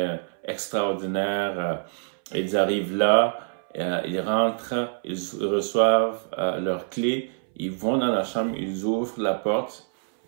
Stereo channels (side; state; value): left; silent; 61 dB below the other